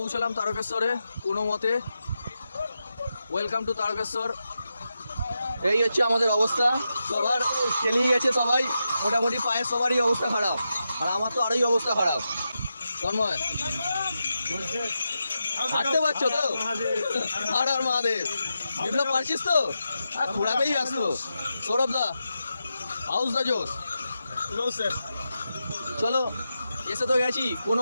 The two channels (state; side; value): inverted; both; correlation -0.88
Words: তারকেশ্বরে কোনো মতে। Welcome to Tarakeswar. এই হচ্ছে আমাদের অবস্থা, সবার খেলিয়ে গেছে সবাই মোটামুটি, পায়ের সবারই অবস্থা খারাপ, আর আমার তো আরোই অবস্থা খারাপ। তন্ময় হাঁটতে পারছো তো? আর আর মহাদেব। বিপ্লব পারছিস তো? ঘোরাতেই ব্যস্ত। সৌরভ দা হাউস দা জোস। চলো এসে তো গেছি কোনো